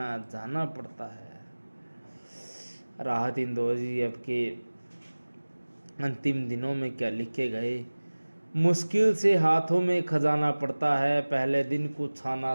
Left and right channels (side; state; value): both; inverted; correlation -1.00